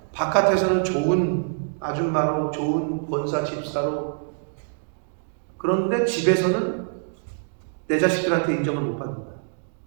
바깥에서는 좋은 아줌마로 좋은 권사 집사로, 그런데 집에서는 내 자식들한테 인정을 못 받는다.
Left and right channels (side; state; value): left; silent; digital silence